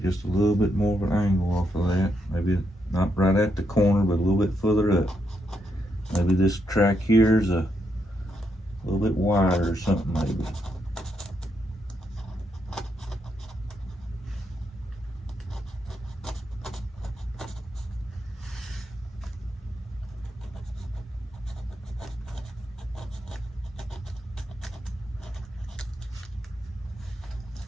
just a little bit more of an angle off of that. Maybe not right at the corner, but a little bit further up. Maybe this track here is a little bit wider or something, maybe.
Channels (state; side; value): normal; both; correlation 0.80